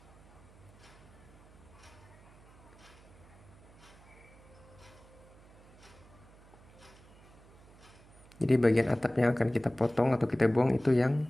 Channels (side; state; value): right; noise; hum, 23 dB below the sound